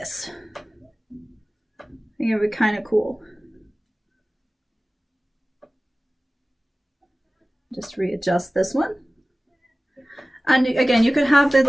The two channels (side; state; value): both; normal; correlation 0.97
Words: I think it would be kind of cool. Just readjust this one. And again, you could have the